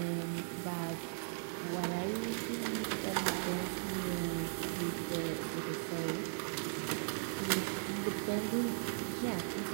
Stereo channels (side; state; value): left; silent; 53 dB below the other